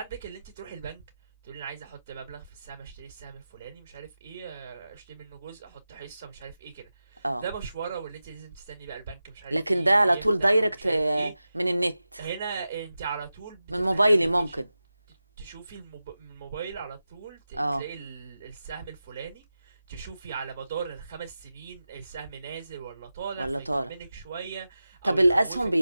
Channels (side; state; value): both; inverted; correlation -0.93